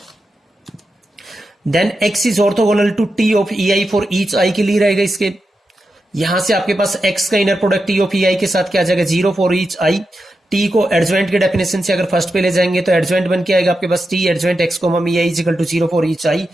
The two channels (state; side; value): normal; both; correlation 0.89